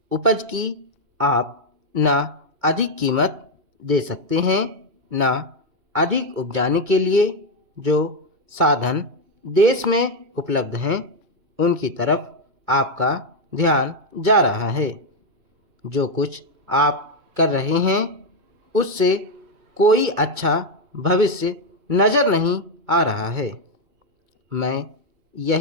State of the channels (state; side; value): late; left; 2.2 ms